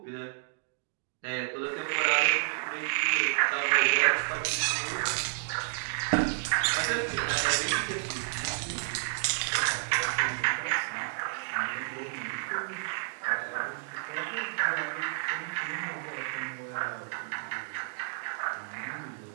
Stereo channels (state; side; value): silent; left; digital silence